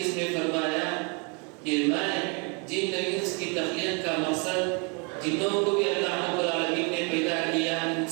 میں فرمایا کہ میں جن انس کی تخلیق کا مقصد، جنوں کو بھی اللہ رب العالمین نے پیدا کیا،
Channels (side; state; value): left; quieter; 34.3 dB